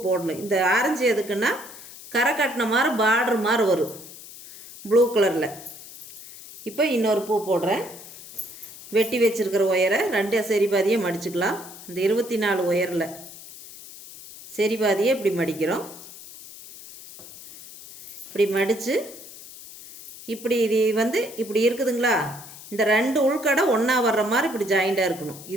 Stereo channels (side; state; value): left; noise; hiss, 16 dB below the sound